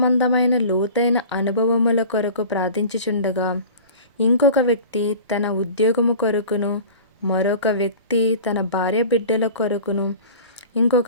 లోతైన అనుభవముల కొరకు ప్రార్థించుచుండగా ఇంకొక వ్యక్తి తన ఉద్యోగము కొరకును, మరొక వ్యక్తి తన భార్య బిడ్డల కొరకును,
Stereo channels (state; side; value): inverted; both; correlation -0.40